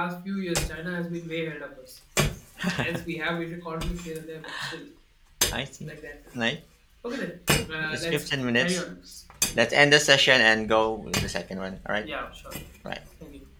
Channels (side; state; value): both; identical; correlation 1.00